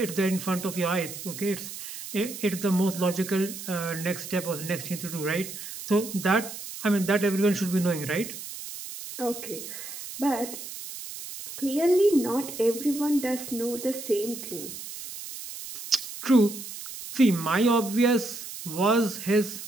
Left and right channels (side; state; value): right; noise; hiss, 10 dB below the sound